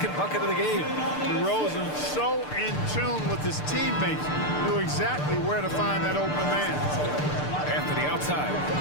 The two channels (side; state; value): right; late; 6.7 ms